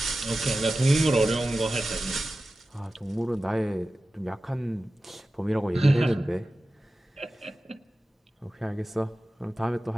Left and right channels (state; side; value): normal; both; correlation 0.94